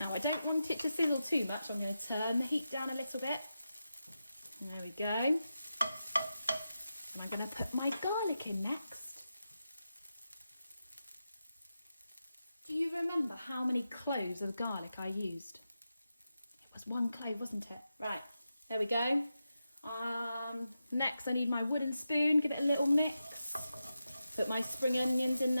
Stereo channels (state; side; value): inverted; both; correlation -0.90